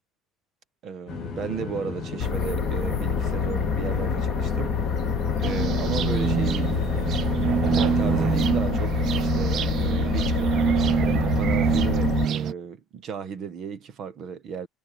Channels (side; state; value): both; normal; correlation 0.50